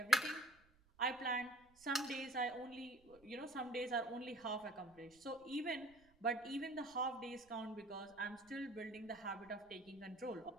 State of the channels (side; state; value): right; noise; rumble, 29 dB below the sound